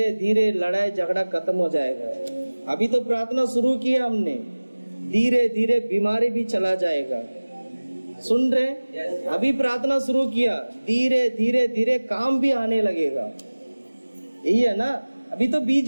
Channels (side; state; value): both; inverted; correlation -1.00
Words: धीरे लड़ाई झगड़ा खत्म हो जाएगा। अभी तो प्रार्थना शुरू किया हमने, धीरे धीरे बीमारी भी चला जाएगा। सुन रहे? अभी प्रार्थना शुरू किया, धीरे धीरे धीरे काम भी आने लगेगा। यही है ना? अभी तो